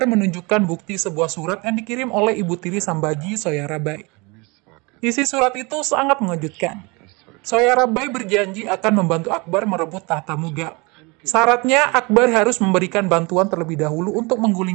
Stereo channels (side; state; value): left; quieter; 27.3 dB